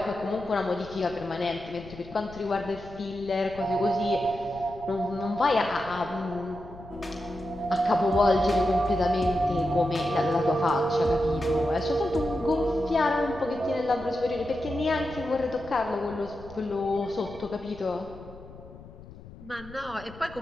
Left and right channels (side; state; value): left; noise; rumble, 18 dB below the sound